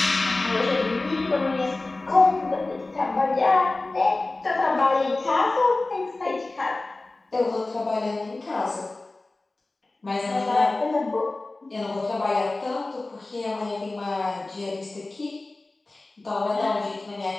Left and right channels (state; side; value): quieter; right; 3.1 dB